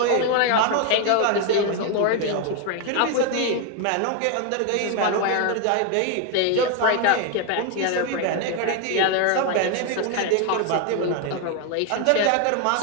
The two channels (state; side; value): different; both; correlation 0.01